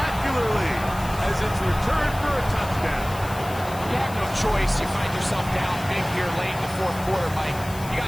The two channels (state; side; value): noise; left; hiss, 16 dB below the sound